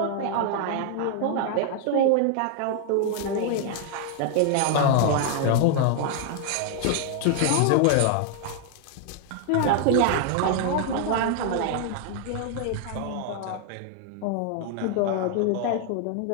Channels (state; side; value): different; both; correlation 0.00